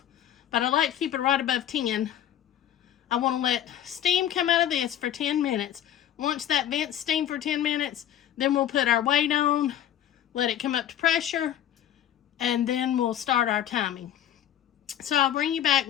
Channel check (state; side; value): quieter; right; 10.9 dB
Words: but I like to keep it right above 10. I want to let steam come out of this for 10 minutes. Once that vents steam for 10 minutes, then we'll put our weight on, let it come up to pressure, and then we'll start our timing. So I'll bring you back